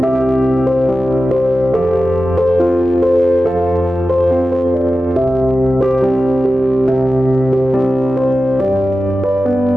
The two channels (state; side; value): normal; both; correlation 0.93